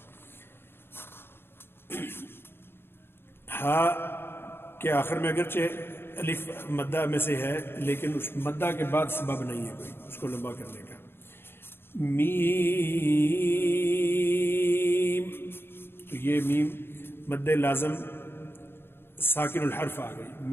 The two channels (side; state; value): right; late; 0.11 ms